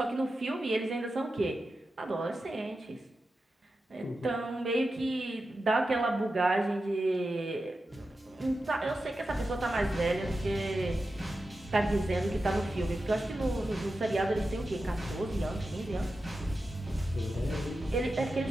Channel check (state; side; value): normal; both; correlation 0.91